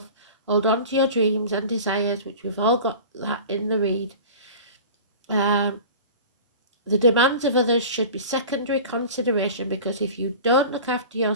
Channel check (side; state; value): both; inverted; correlation -0.37